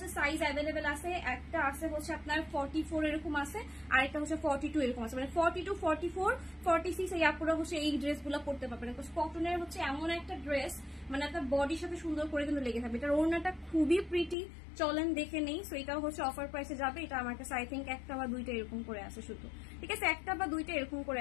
সাইজ অ্যাভেলেবেল আছে, একটা আছে হচ্ছে আপনার 44 এরকম আছে, আর একটা হচ্ছে 42 এরকম আছে, মানে 42, 44, 46 এই আপুরা হচ্ছে এই ড্রেসগুলো পড়তে পারবেন। কটনের হচ্ছে এমন একটা ড্রেস, মানে আপনার বডির সাথে সুন্দর করে কিন্তু লেগে থাকবে। এটার ওড়নাটা খুবই প্রিটি, চলেন দেখে নেই। সো এটাও হচ্ছে অফার প্রাইসে যাবে। এটা আমার কাছে আই থিঙ্ক একটা বা দুইটা এরকম করে আছে শুধু, ঠিক আছে? একটা বা দুইটা এরকম করে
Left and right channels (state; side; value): drops out; right; at 14.4 s